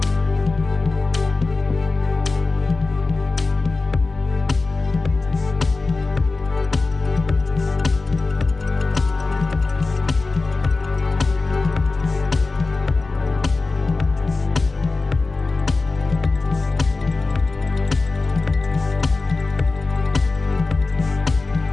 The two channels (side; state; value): right; quieter; 3.7 dB